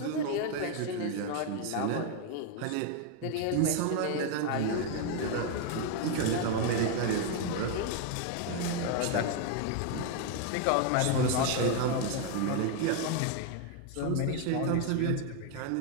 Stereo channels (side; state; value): both; different; correlation 0.01